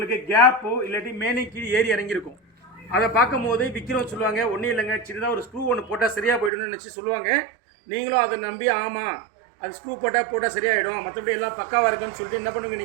கேப்போ இல்லாட்டி மேலே கீழே ஏறி இறங்கியிருக்கும். அதை பார்க்கும் போது விற்கிறோம் சொல்லுவாங்க, ஒன்றும் இல்லைங்க சின்னதாக ஒரு ஸ்க்ரூ ஒன்று போட்டால் சரியாக போய்டும்னு நினச்சி சொல்லுவாங்க. நீங்களும் அதை நம்பி ஆமாம் அது ஸ்க்ரூ போட்டால் சரியாயிடும், மற்றபடி எல்லாம் பக்காவாக இருக்குன்னு சொல்லிட்டு என்ன பண்ணுவீங்க,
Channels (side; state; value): left; drops out; at 6.5 s